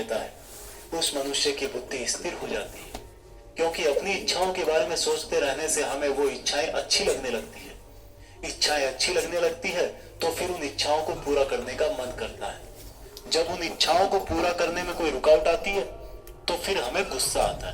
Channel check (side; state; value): both; identical; correlation 1.00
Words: है, उस मनुष्य की बुद्धि स्थिर हो जाती है। क्योंकि अपनी इच्छाओं के बारे में सोचते रहने से हमें वो इच्छाएं अच्छी लगने लगती है। इच्छाएं अच्छी लगने लगती है तो फिर उन इच्छाओं को पूरा करने का मन करता है। जब उन इच्छाओं को पूरा करने में कोई रुकावट आती है तो फिर हमें गुस्सा आता